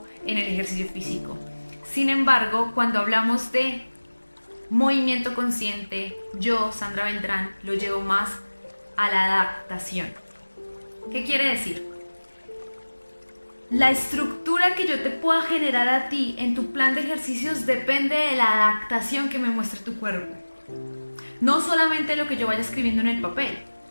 en el ejercicio físico. Sin embargo, cuando hablamos de movimiento consciente, yo, Sandra Beltrán, lo llevo más a la adaptación. ¿Qué quiere decir? La estructura que yo te pueda generar a ti en tu plan de ejercicios depende de la adaptación que me muestre tu cuerpo. No solamente lo que yo vaya escribiendo en el papel,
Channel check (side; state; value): both; inverted; correlation -1.00